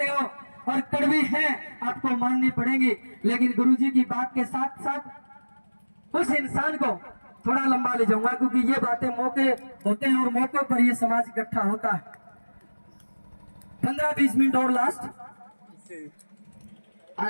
हो और कड़वी है, आपको माननी पड़ेगी। लेकिन गुरुजी की बात के साथ साथ उस इंसान को थोड़ा लंबा ले जाऊंगा, क्योंकि ये बातें मौके होते हैं और मौके पर ये समाज इकट्ठा होता है। 15-20 मिनट और लास्ट,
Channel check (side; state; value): both; inverted; correlation -1.00